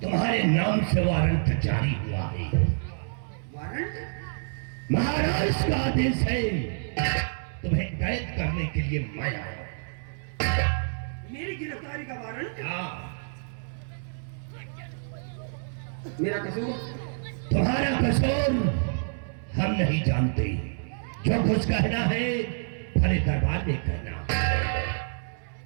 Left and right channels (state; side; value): silent; left; 60 dB below the other